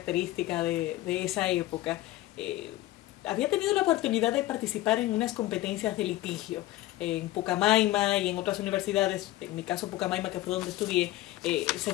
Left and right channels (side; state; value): right; quieter; 16.3 dB